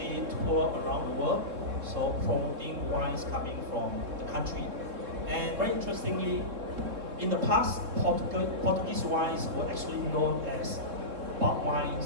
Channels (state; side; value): late; left; 3.8 ms